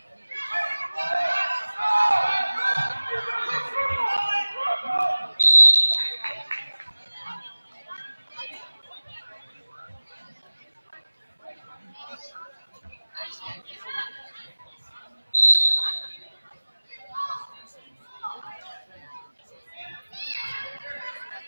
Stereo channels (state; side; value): inverted; both; correlation -1.00